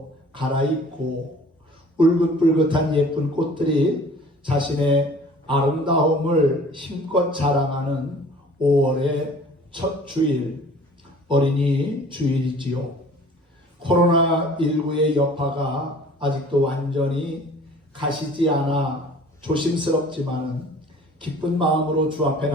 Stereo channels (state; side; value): normal; both; correlation 0.49